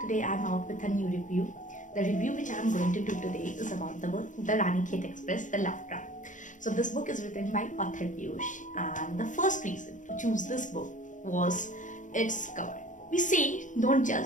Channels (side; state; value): right; late; 0.37 ms